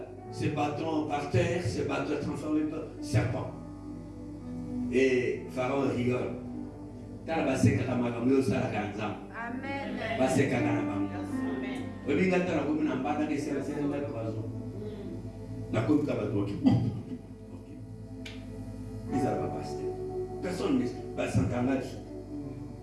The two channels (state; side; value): identical; both; correlation 1.00